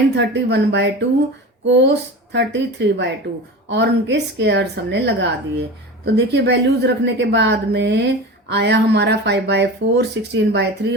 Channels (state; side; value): normal; both; correlation 0.31